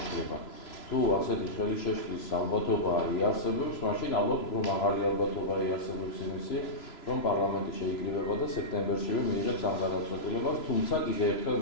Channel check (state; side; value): late; right; 3.0 ms